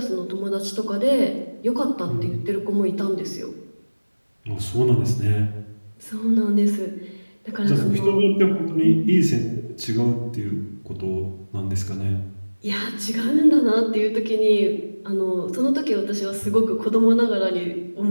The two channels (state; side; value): inverted; both; correlation -1.00